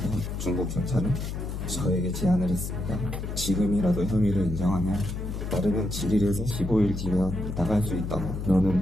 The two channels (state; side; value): noise; left; hum, 5 dB below the sound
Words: 중국 경찰은 저에게 제안을 했습니다. 지금이라도 혐의를 인정하면 빠르면 7일에서 15일 뒤면 나갈 수 있다고.